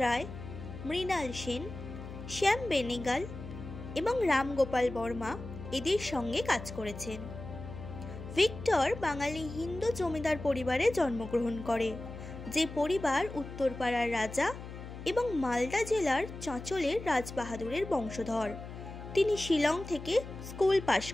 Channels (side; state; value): left; noise; hum, 11 dB below the sound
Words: Ray, Mrinal Sen, Shyam Benegal এবং রাম গোপাল বর্মা এদের সঙ্গে কাজ করেছেন। ভিক্টর বাঙালি হিন্দু জমিদার পরিবারে জন্মগ্রহণ করে, যে পরিবার উত্তরপাড়ার রাজা এবং মালদা জেলার চাঁচলের রাজবাহাদুরের বংশধর। তিনি শিলং থেকে স্কুল পাশ